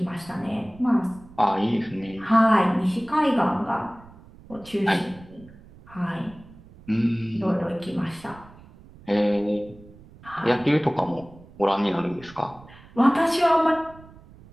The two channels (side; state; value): right; noise; rumble, 22 dB below the sound